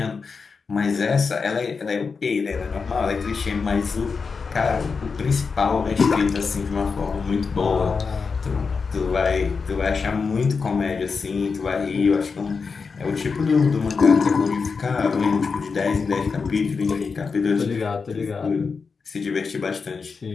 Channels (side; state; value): right; quieter; 5.1 dB